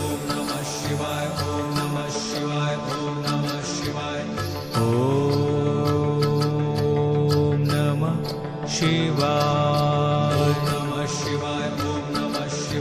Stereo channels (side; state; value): both; identical; correlation 1.00